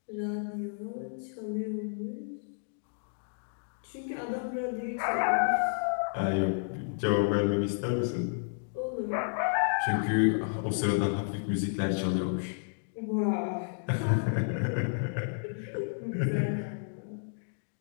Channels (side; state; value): right; silent; digital silence